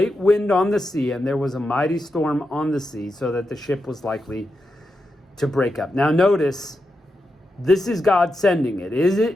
wind on the sea, and there was a mighty storm on the sea, so that the ship was likely to break up. Now notice, this is God sending it.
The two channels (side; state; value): both; normal; correlation 0.87